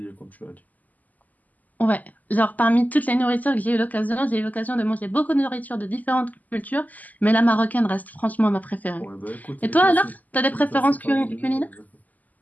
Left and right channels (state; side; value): late; right; 0.080 ms